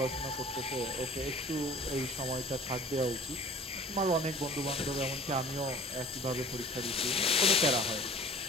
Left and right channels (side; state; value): both; normal; correlation 0.46